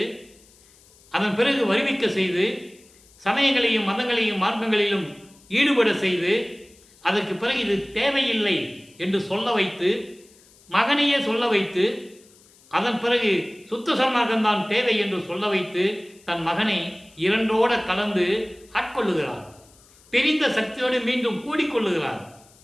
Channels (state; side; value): noise; left; hiss, 28 dB below the sound